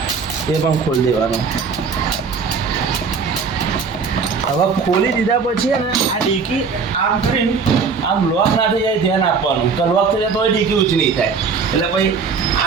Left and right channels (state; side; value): quieter; left; 5.3 dB